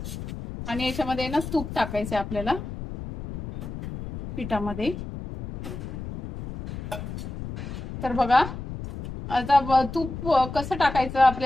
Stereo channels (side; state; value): left; noise; rumble, 8 dB below the sound